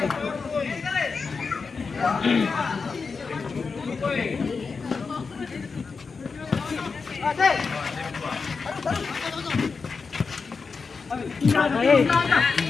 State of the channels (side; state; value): right; quieter; 4.9 dB